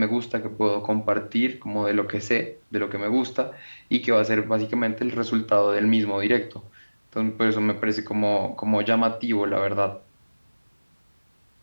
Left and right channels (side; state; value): both; inverted; correlation -1.00